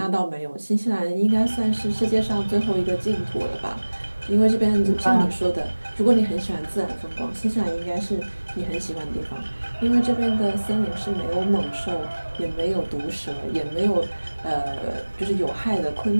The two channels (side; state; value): both; inverted; correlation -1.00